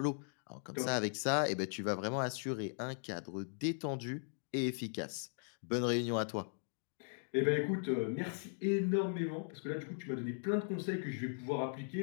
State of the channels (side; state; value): right; silent; digital silence